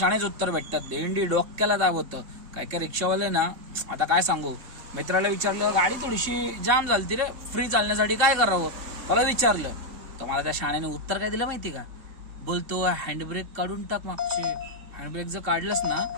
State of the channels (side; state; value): left; late; 3.6 ms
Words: उत्तर भेटतात. भेंडी डोक्याला दाबवतं. काय काय रिक्षावाले ना, आता काय सांगू, मित्राला विचारलं गाडी थोडीशी जाम झाली रे, फ्री चालण्यासाठी काय करावं, मला विचारलं तर मला त्या शाण्याने उत्तर काय दिलं माहिती का? बोलतो हँडब्रेक काढून टाक मागचे. हँडब्रेक जर काढलंस ना,